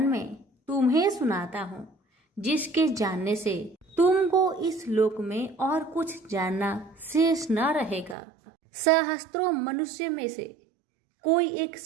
में तुम्हें सुनाता हूँ, जिसके जानने से तुमको इस लोक में और कुछ जानना शेष न रहेगा। सहस्त्रों मनुष्य में से कोई एक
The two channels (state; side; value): drops out; left; at 8.2 s